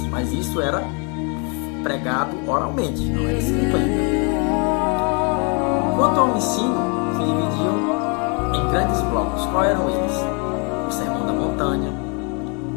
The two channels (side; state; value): right; quieter; 34.6 dB